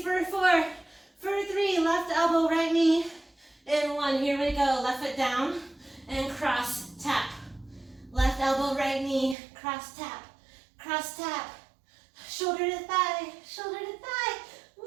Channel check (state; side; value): drops out; left; at 9.3 s